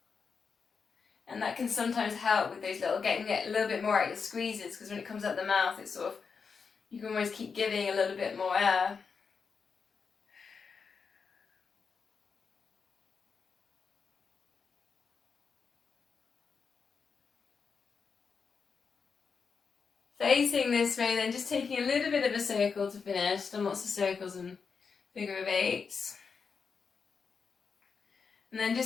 And that can sometimes help with those getting a little bit more out your squeezes, because when it comes out the mouth, it's sort of, you can always keep giving a little bit more air. Facing this way, then just taking a little bit of a circle to finish. Done lots of circles and figure of eights. And then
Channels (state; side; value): quieter; right; 5.6 dB